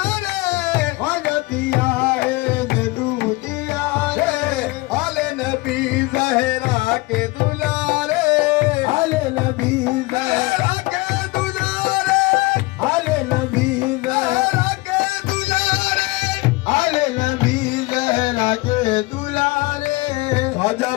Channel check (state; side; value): quieter; right; 22.8 dB